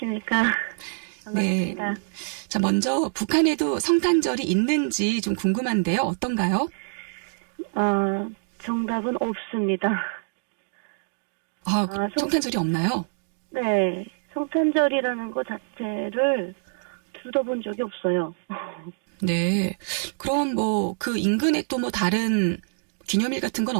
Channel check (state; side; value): silent; left; 60 dB below the other